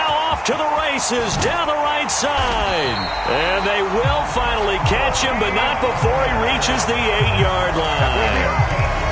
off to the races down the right side. And they will finally catch him, but not before he reaches the 8-yard line.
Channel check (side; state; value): both; identical; correlation 1.00